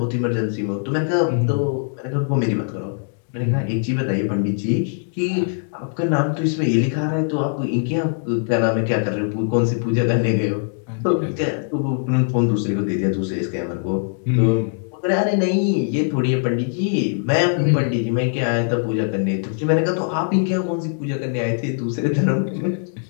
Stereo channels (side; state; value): right; silent; digital silence